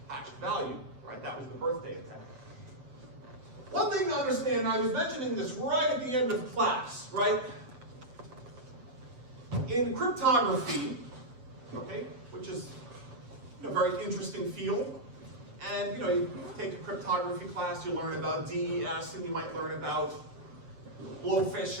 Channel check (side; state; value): left; late; 7.8 ms